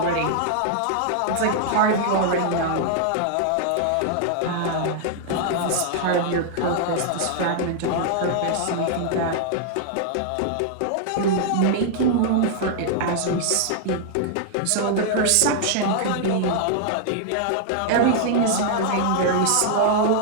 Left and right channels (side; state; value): both; different; correlation -0.01